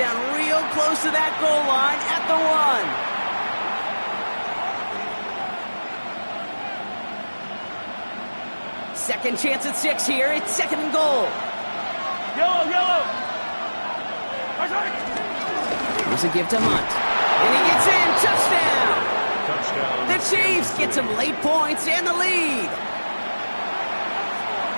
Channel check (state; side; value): inverted; both; correlation -1.00